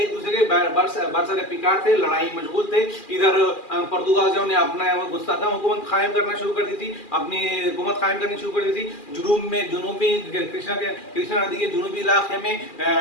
दूसरे के बरसरे पिकार थे, लड़ाई मशगूल थे। इधर पुर्तगालियों ने अपना मुस्तहकम हुकूमत कायम करना शुरू कर दी थी, अपनी हुकूमत कायम करनी शुरू कर दी थी। जुनूबी कृष्णा नदी के जुनूबी इलाके में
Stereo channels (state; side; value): late; right; 2.4 ms